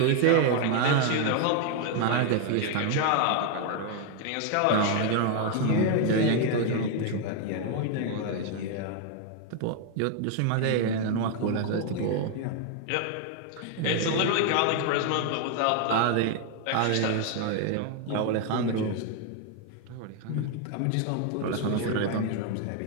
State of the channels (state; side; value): different; both; correlation 0.01